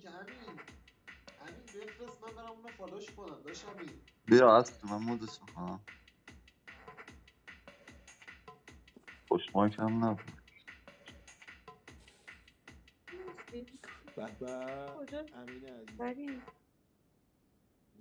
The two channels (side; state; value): both; identical; correlation 1.00